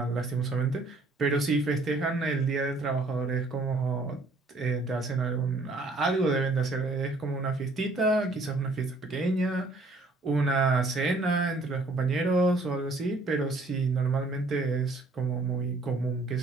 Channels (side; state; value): left; quieter; 3.1 dB